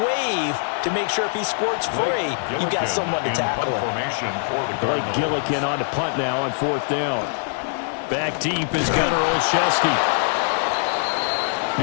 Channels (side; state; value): right; silent; digital silence